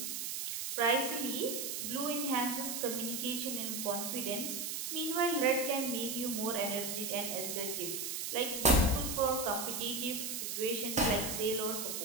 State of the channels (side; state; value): right; noise; hiss, 3 dB below the sound